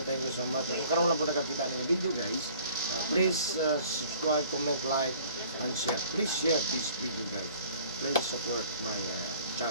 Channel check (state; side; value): inverted; both; correlation -0.53